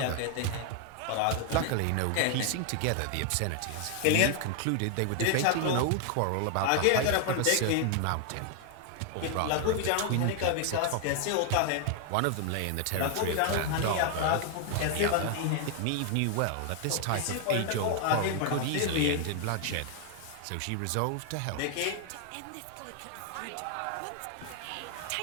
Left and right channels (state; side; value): different; both; correlation 0.00